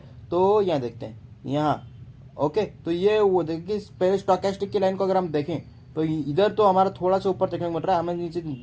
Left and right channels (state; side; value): identical; both; correlation 1.00